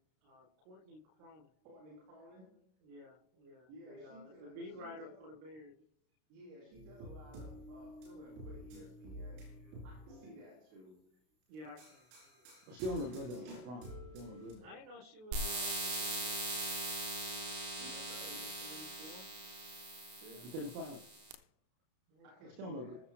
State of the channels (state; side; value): late; left; 32 ms